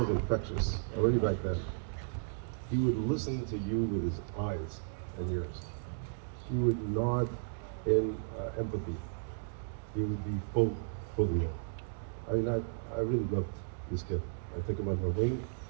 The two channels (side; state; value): left; silent; digital silence